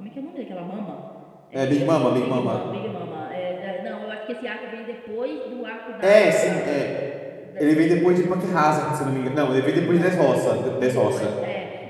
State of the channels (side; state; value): both; identical; correlation 1.00